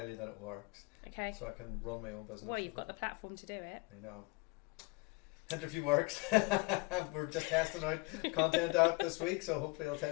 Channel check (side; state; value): right; quieter; 26.6 dB